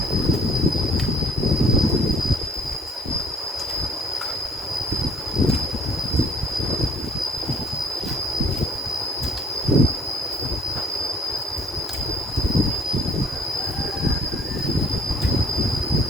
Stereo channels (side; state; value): both; normal; correlation 0.54